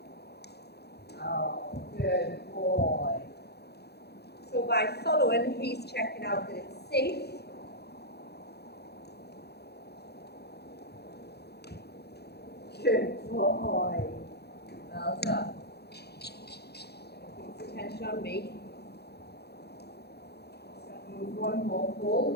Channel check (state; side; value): late; right; 0.48 ms